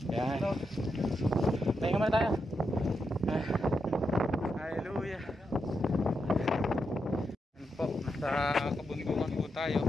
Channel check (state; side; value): normal; both; correlation 0.85